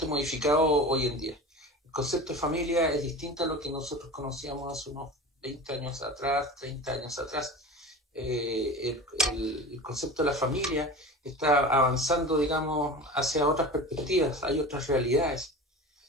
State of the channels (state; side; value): normal; both; correlation 0.33